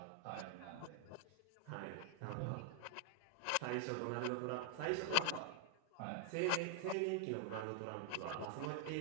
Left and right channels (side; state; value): both; different; correlation 0.00